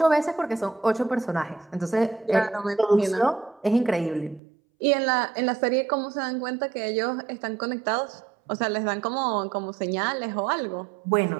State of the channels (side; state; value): left; drops out; at 4.4 s